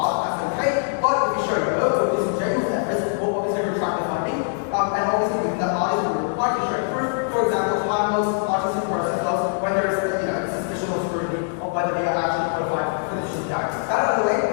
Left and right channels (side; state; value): right; silent; digital silence